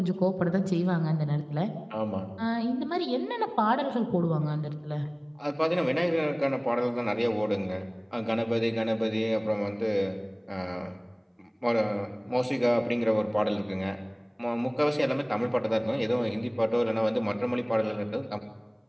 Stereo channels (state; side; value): identical; both; correlation 1.00